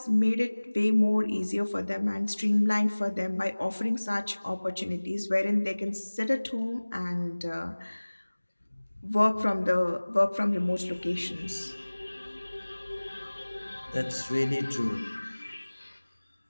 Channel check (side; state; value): both; inverted; correlation -1.00